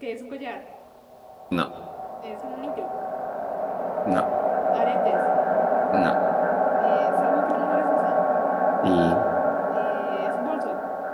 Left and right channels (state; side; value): identical; both; correlation 1.00